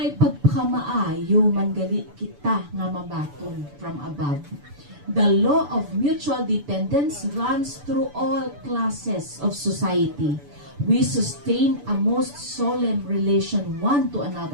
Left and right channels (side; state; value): left; late; 6.9 ms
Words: pagpakamaayo man gali kita nga mabaton from above. The law of mutual dependence runs through all classes of society. We sustain a most solemn relation one to